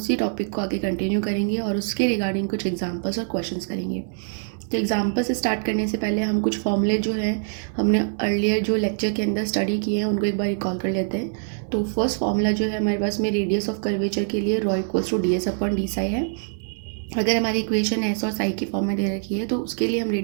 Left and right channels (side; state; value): left; silent; digital silence